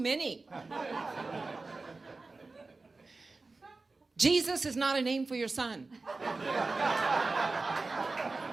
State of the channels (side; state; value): left; quieter; 3.6 dB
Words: Jesus is not a name for your son.